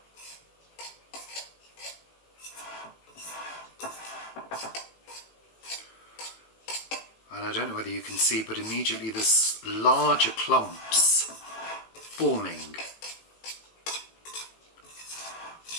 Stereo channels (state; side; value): late; right; 18 ms